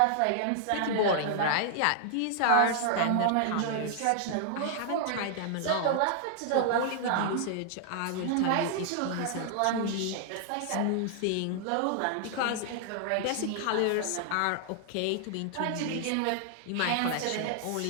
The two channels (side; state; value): both; different; correlation -0.01